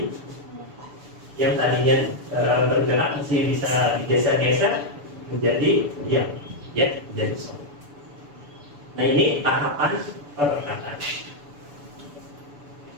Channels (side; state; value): left; late; 6.9 ms